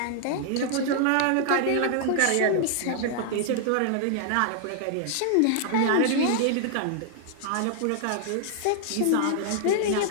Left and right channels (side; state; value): both; different; correlation 0.00